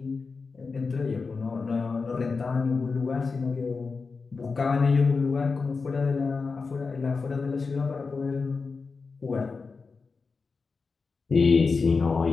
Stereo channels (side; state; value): right; quieter; 4.6 dB